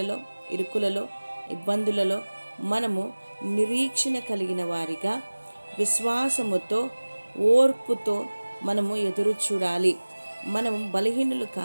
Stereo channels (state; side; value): inverted; both; correlation -1.00